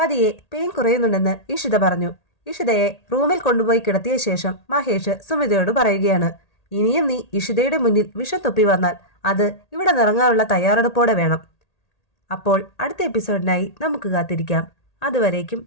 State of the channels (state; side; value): late; right; 1.8 ms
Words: പെയിൻ കുറയുന്നുണ്ടെന്ന് ഇഷിത പറഞ്ഞു. ഇഷിതയെ റൂമിൽ കൊണ്ടുപോയി കിടത്തിയ ശേഷം മഹേഷ് സുമിതയോട് പറയുകയാണ്. ഇനിയും നീ ഇഷിതയുടെ മുന്നിൽ വിഷം തൊപ്പി വന്നാൽ അത് ഇവിടെ നിറങ്ങാനുള്ള തയ്യാറെടുപ്പോടെ വേണം. അപ്പോൾ അടുത്ത എപ്പിസോഡിനായി നമുക്ക് കാത്തിരിക്കാം.